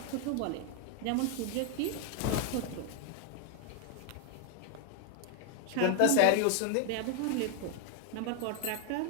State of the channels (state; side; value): different; both; correlation 0.01